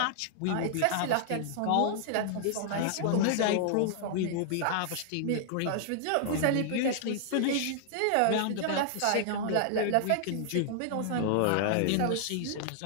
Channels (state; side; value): different; both; correlation -0.01